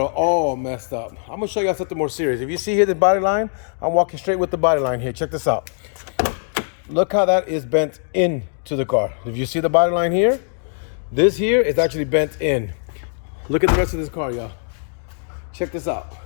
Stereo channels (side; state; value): right; silent; digital silence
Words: messed up. I'm gonna show y'all something more serious. If you see here the body line, I'm walking straight with the body line here. Check this out. Look how that is bent into the car. If you see the body line here, this here is actually bent in. Look at the rest of this car, y'all. Check this out.